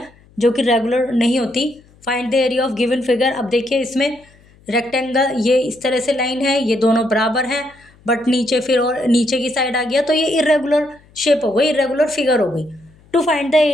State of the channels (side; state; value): left; noise; hum, 29 dB below the sound